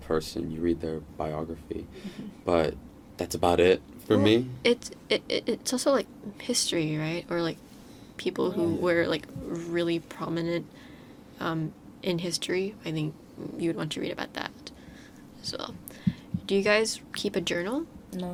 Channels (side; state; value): both; identical; correlation 1.00